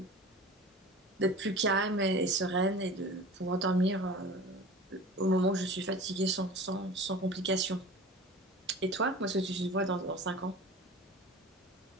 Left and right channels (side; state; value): both; normal; correlation 0.38